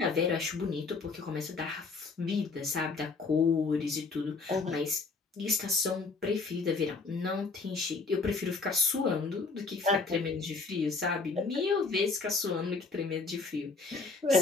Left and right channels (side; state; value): right; quieter; 4.1 dB